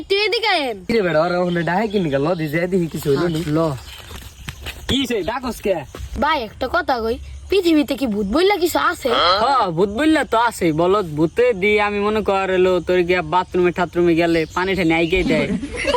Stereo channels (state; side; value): identical; both; correlation 1.00